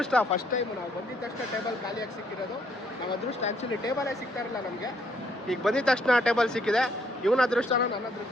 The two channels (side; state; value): both; normal; correlation 0.69